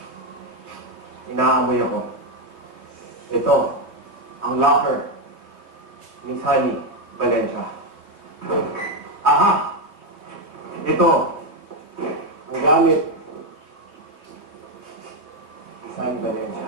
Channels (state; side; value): late; left; 3.2 ms